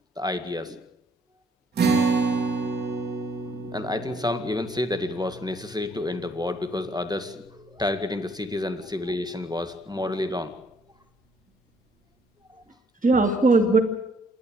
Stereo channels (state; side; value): normal; both; correlation 0.65